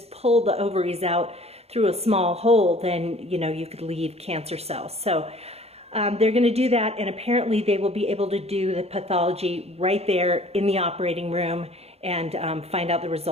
pull the ovaries out through a small hole, then, you know, you could leave cancer cells. So they're going to do that, and apparently they will be able to do the pathology right there in the operating room and find out the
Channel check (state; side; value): late; left; 0.30 ms